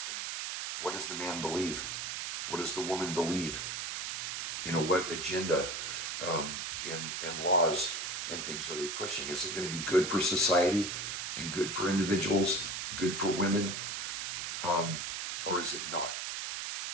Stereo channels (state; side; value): noise; right; hiss, 3 dB below the sound